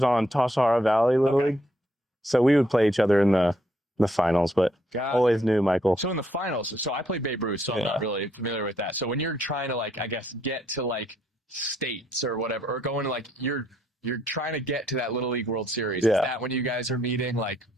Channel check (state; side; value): normal; both; correlation 0.72